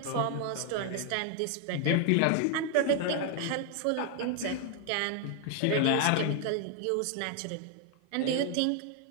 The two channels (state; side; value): different; both; correlation 0.00